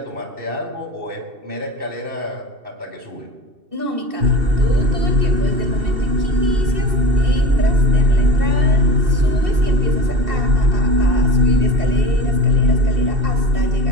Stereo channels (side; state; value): left; late; 2.7 ms